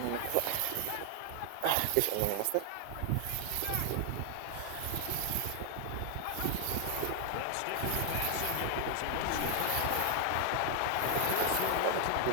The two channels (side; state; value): both; different; correlation 0.00